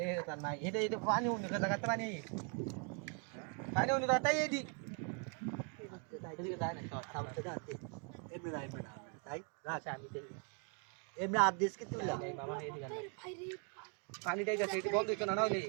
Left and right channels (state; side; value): quieter; left; 38.8 dB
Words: তা নাই এটা এটা পানি উনি কথা কথা পানি পানি উনি কথা এই দি এদিকে যায় না সামনে দাঁতে এমনি রাইবে না তাই আচ্ছা আমি দেখি এমনি আদেশ কি তুইলা এই মামা এদিকে ভাই রে পানি দেই যাচ্ছে এটি বন্ধ হইতো না না হইলে